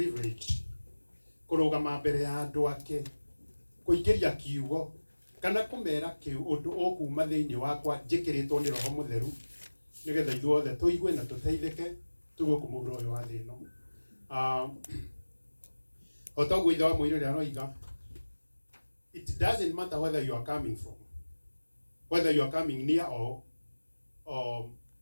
kurugama mbere ya andu ake kuingiria kiugo kana kumera kiu undu ukuma thiini wakwa njikiritwo ni Roho Mutheru nigetha ithuothe tuigue na tuteithike tugukumura uyu wa thino. Otaguo ithe wa muiri ria roiga, it doesn't matter whether you are coming from, whether you are coming near or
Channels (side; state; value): both; inverted; correlation -1.00